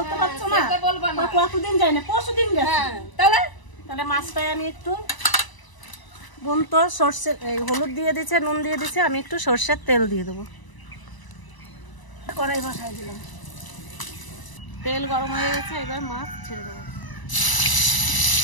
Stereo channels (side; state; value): right; late; 1.0 ms